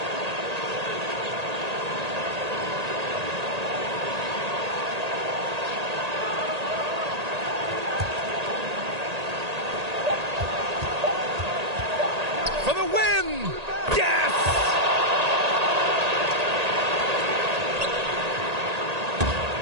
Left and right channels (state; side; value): late; left; 1.8 ms